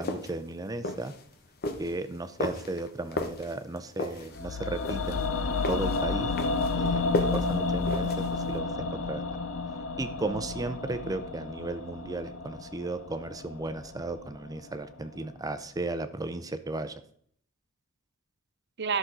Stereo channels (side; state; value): both; normal; correlation 0.23